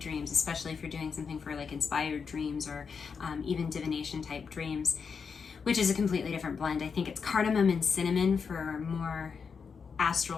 especially if you're doing something for like inspired dreams or even divination type dreams, which is a completely different blend. I think it's cardamom and cinnamon for more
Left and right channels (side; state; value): right; quieter; 5.8 dB